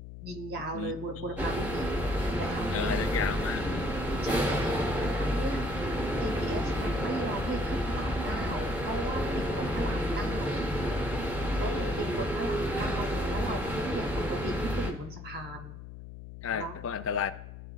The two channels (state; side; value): noise; left; hum, 12 dB below the sound